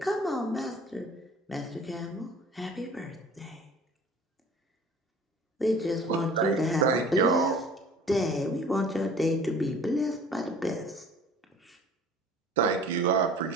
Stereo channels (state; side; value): normal; both; correlation 0.47